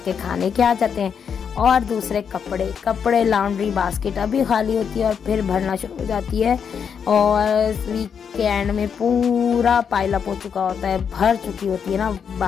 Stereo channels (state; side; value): quieter; right; 7.1 dB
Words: खाने के आ जाते हैं। और दूसरे कपड़े लॉन्ड्री बास्केट अभी खाली होती है और फिर भरना शुरू हो जाती है, और वीक के एंड में पूरा पाइलअप हो चुका होता है, भर चुकी होती है ना